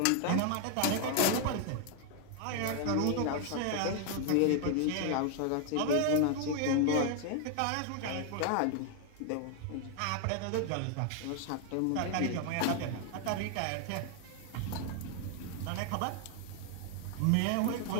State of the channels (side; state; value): both; different; correlation 0.00